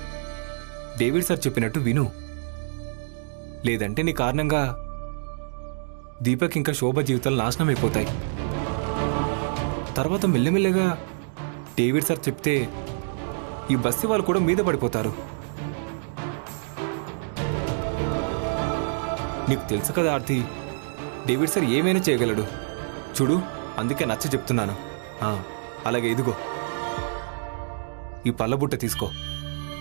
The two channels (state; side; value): silent; left; digital silence